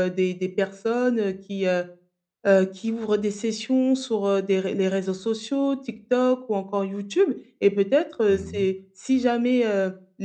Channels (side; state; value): both; identical; correlation 1.00